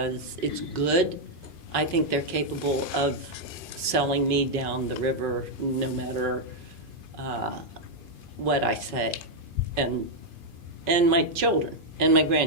it's good. I think they're capable of selling me down the river no matter what I say, and my children and my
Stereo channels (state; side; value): late; left; 2.5 ms